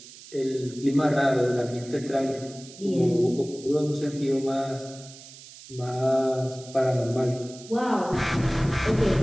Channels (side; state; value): right; noise; hiss, 18 dB below the sound